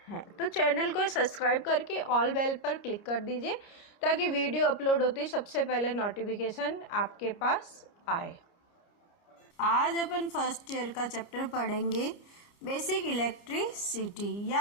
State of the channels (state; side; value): late; right; 29 ms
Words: हैं। तो चैनल को सब्सक्राइब करके ऑल बेल पर क्लिक कर दीजिए ताकि वीडियो अपलोड होती सबसे पहले नोटिफिकेशन आपके पास आए। आज अपन फर्स्ट ईयर का चैप्टर पढ़ेंगे बेसिक इलेक्ट्रिसिटी